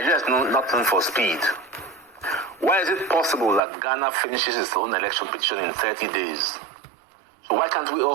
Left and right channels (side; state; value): left; drops out; at 3.6 s